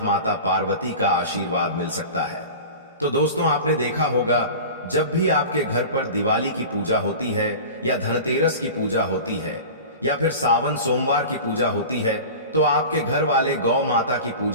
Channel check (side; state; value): both; inverted; correlation -0.34